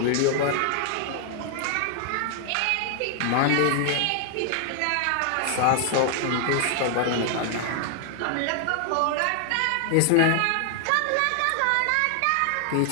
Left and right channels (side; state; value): both; different; correlation 0.00